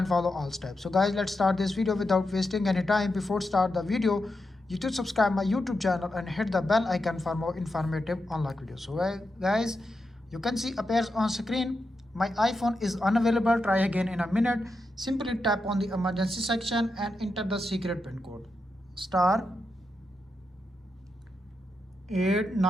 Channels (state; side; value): normal; both; correlation 0.87